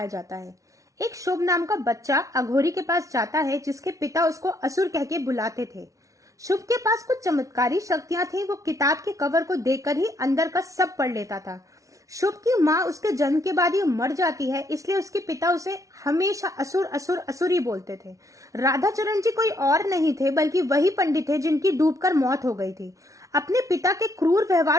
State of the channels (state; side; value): late; left; 0.16 ms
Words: जाता है। एक शुभ नाम का बच्चा अघोरी के पास जाता है जिसके पिता उसको असुर कह के बुलाते थे। शुभ के पास कुछ चमत्कारी शक्तियां थी। वो किताब के कवर को देखकर ही अंदर का सब पढ़ लेता था। शुभ की माँ उसके जन्म के बाद ही मर जाती है, इसलिए उसके पिता उसे हमेशा असुर असुर असुर ही बोलते थे। राधाचरण जी कोई और नहीं थे बल्कि वही पंडित थे जिनकी डूबकर मौत हो गई थी। अपने पिता के क्रूर